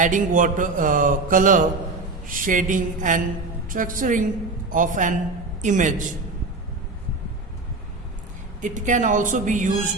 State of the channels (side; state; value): left; quieter; 3.5 dB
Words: water, color, shading and structuring of an image. It can also be